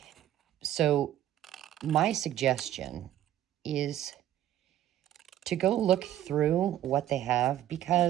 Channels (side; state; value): left; quieter; 12.2 dB